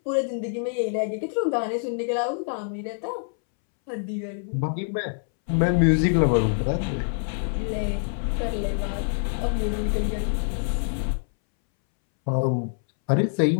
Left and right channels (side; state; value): right; silent; 61 dB below the other